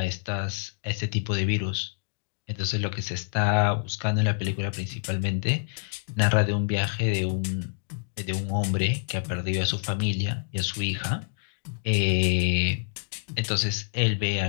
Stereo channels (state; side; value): silent; right; digital silence